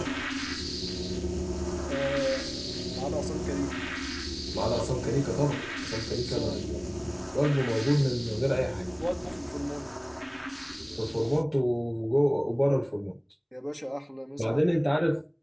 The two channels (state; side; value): identical; both; correlation 1.00